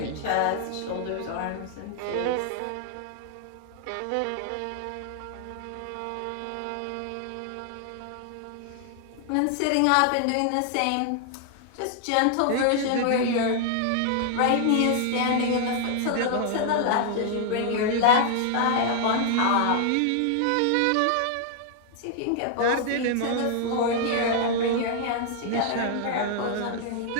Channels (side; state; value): both; different; correlation -0.01